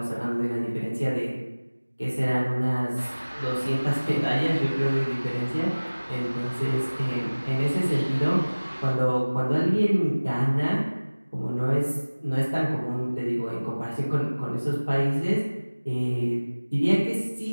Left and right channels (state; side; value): inverted; both; correlation -1.00